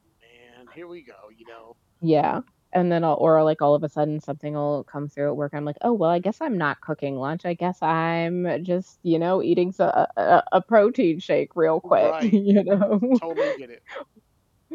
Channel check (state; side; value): identical; both; correlation 1.00